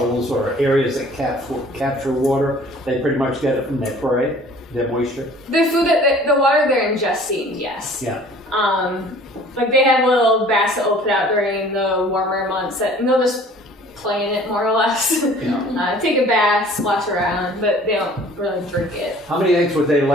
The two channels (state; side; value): normal; both; correlation 0.50